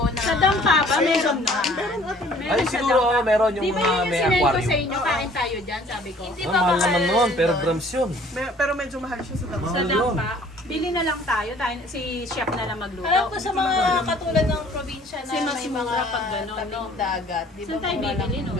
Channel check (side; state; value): both; normal; correlation 0.54